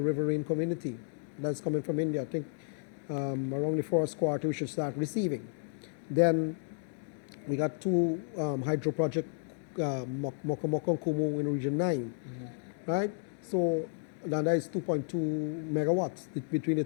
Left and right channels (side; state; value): right; silent; digital silence